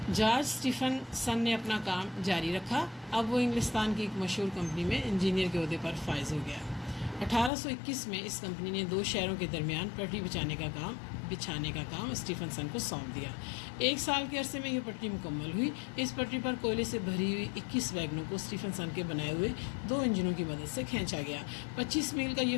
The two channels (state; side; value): drops out; right; at 7.5 s